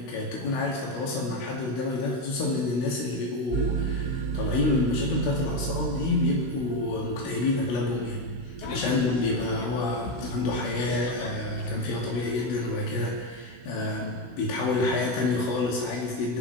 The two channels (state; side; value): late; right; 16 ms